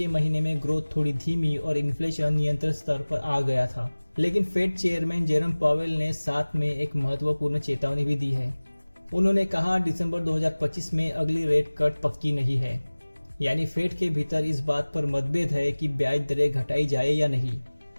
महीने में ग्रोथ थोड़ी धीमी और इन्फ्लेशन नियंत्रित स्तर पर आ गया था। लेकिन फेड चेयरमैन जेरम पावेल ने साथ में एक महत्वपूर्ण चेतावनी भी दी है। उन्होंने कहा दिसंबर 2025 में अगली रेट कट पक्की नहीं है। यानी फेड के भीतर इस बात पर मतभेद है कि ब्याज दरें घटाई जाए या नहीं।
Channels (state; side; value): inverted; both; correlation -1.00